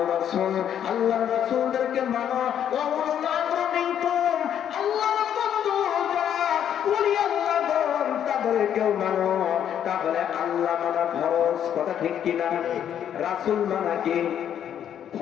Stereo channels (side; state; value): right; quieter; 9.6 dB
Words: রাসূল, আল্লাহর রাসূলদেরকে মানো, ওয়া উলিল আমরি মিনকুম, আল্লাহর বন্ধু যারা ওলি আল্লাহগণ তাদেরকেও মানো। তাহলে আল্লাহ মানা ফরজ, কথা ঠিক কিনা? রাসূল মানা কি